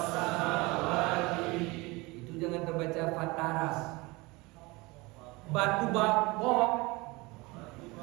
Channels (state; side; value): quieter; left; 23.8 dB